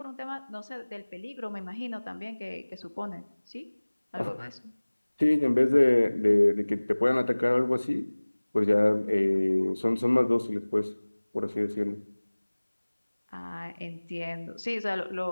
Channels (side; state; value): both; inverted; correlation -1.00